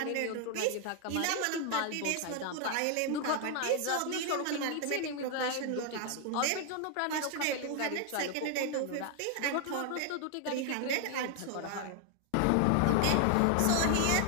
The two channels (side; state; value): both; different; correlation 0.00